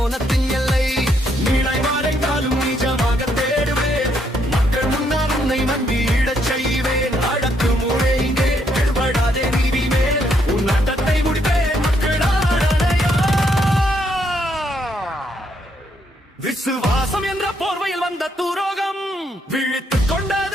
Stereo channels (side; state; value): both; normal; correlation 0.74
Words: எல்லை. நீளை மறைந்தாலும் நிஜமாக தேடுவேன், மக்கள் முன்னால் உன்னை மண்டியிடச் செய்வேன். அடக்கு முறை இங்கே எடுபடாதே நீதி மேல், உன் நாட்டத்தை முடிப்பேன் மக்களாடையா. விசுவாசம் என்ற போர்வையில் வந்த துரோகம் விழித்துக்